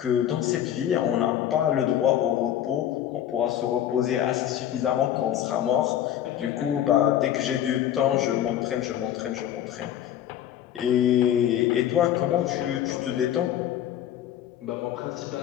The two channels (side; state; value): right; quieter; 11.1 dB